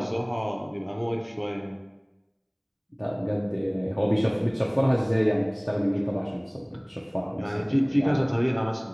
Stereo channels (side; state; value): both; identical; correlation 1.00